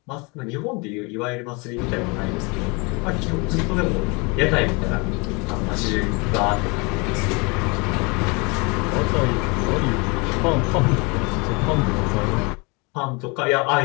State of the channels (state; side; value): quieter; right; 29.2 dB